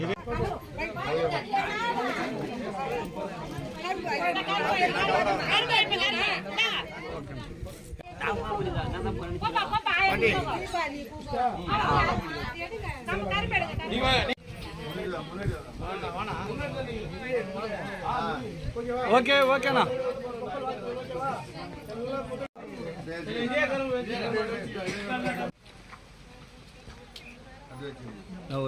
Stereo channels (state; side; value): identical; both; correlation 1.00